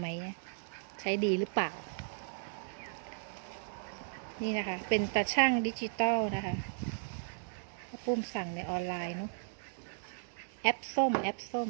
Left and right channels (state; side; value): silent; left; digital silence